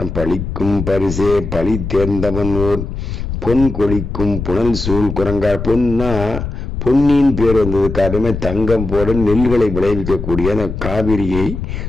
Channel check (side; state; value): left; noise; rumble, 6 dB below the sound